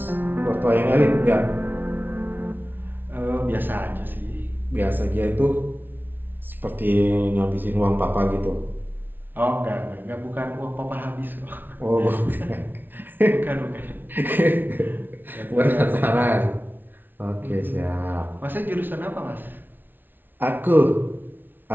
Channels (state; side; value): late; left; 0.093 ms